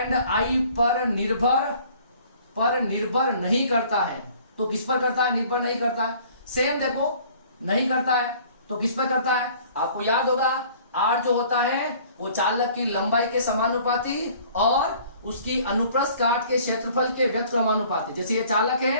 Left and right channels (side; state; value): both; inverted; correlation -0.53